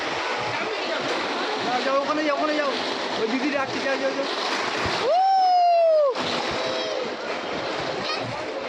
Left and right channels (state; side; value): identical; both; correlation 1.00